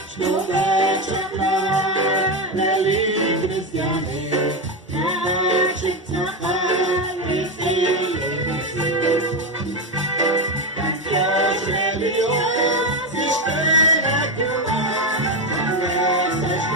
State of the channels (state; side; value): normal; both; correlation 0.12